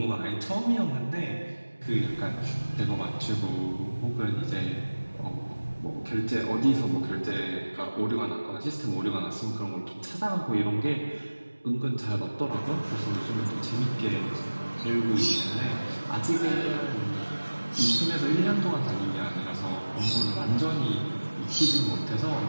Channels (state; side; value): inverted; both; correlation -1.00